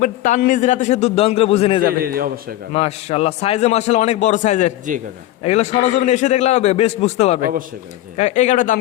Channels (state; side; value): quieter; right; 14.7 dB